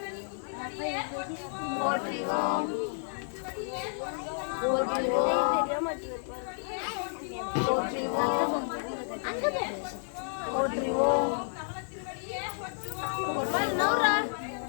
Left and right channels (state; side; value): silent; right; digital silence